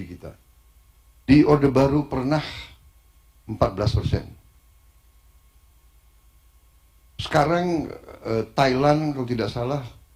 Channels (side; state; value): both; identical; correlation 1.00